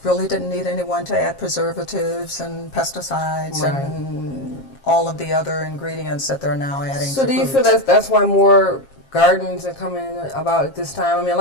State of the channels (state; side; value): late; right; 7.4 ms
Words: really didn't need anyone to add preservatives and pesticides and all of the other ingredients that they're now adding So to do you foods. feel that's why more gardens are coming in about at this time? I mean, a